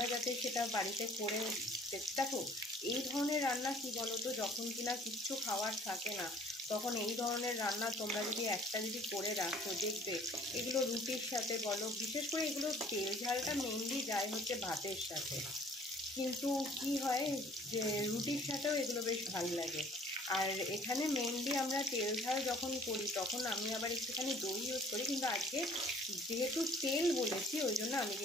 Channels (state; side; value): normal; both; correlation 0.54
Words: যাতে সেটা বাড়িতে করে দেখো। এই ধরনের রান্না কি বলো তো, যখন কিনা কিচ্ছু খাওয়ার থাকে না তখন এই ধরনের রান্না তোমরা যদি একটা যদি করে রাখো, দেখবে এগুলো রুটির সাথে বলো, বিশেষ করে এগুলো তেল ঝালটা মেনলি যায় হচ্ছে ভাতের সাথে, কিন্তু কি হয় যে রুটির সাথেও এগুলো বেশ ভালো লাগে। আর এখানে মেনলি আমরা তেল ঝাল যখন করি তখন আমি আবার একটুখানি দই ইউজ করি, কিন্তু আজকে যেহেতু তেল বলেছি ওই জন্য আমি